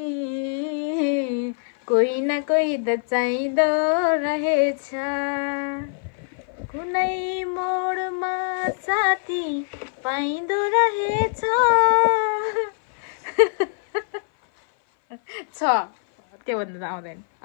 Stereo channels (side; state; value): right; silent; 57 dB below the other